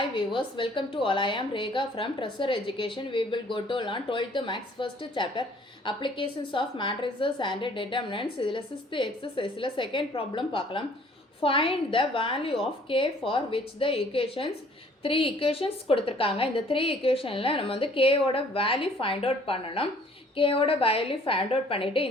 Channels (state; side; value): normal; both; correlation 0.57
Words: viewers, welcome to all. I am Rekha from Treasure Education. We will go to learn 12th Maths first chapter Applications of Matrices and Determinants. இதில் 6th exerciseல second problem பார்க்கலாம். Find the value of k for which the equations 3 equations கொடுத்திருக்காங்க. இந்த 3 equationல நம்ம வந்து k ஓட value find out பண்ணணும். k ஓட value find out பண்ணிட்டு